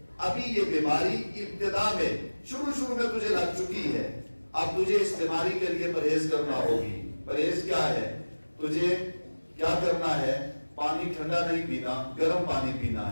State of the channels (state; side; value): inverted; both; correlation -1.00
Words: ابھی یہ بیماری ابتدا میں شروع میں تجھے لگ چکی ہے، اب تجھے اس بیماری کے لیے پرہیز کرنا ہوگی. پرہیز کیا ہے؟ تجھے کیا کرنا ہے؟ پانی ٹھنڈا نہیں پینا، گرم پانی پینا